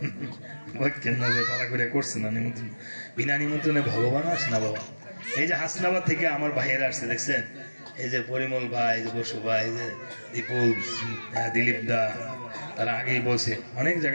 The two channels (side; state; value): both; inverted; correlation -1.00